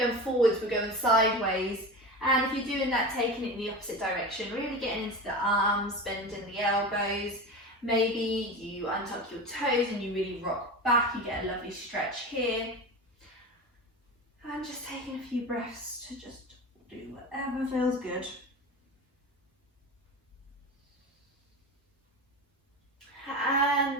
forwards, we're going sideways. And if you're doing that, taking it in the opposite direction, really getting into the arms, bending the elbows. Maybe you untuck your toes and you really rock back, you get a lovely stretch here. And just taking a few breaths to just do whatever feels good. And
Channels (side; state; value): both; normal; correlation 0.27